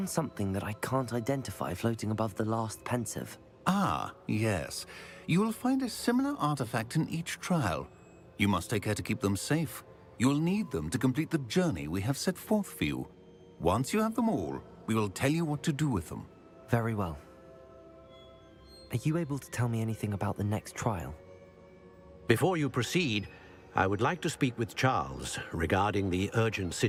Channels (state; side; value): identical; both; correlation 1.00